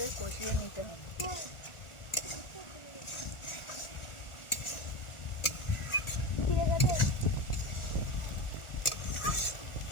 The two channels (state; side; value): late; right; 1.4 ms